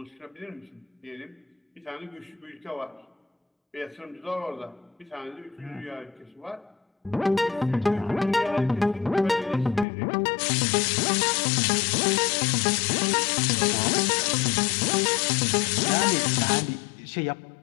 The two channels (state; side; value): drops out; right; at 9.9 s